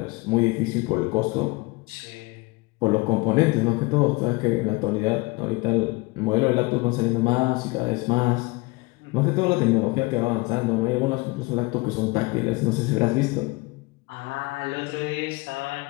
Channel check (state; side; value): quieter; right; 25.0 dB